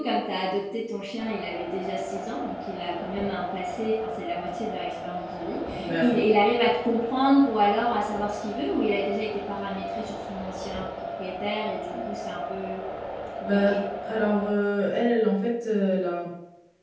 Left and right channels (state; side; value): identical; both; correlation 1.00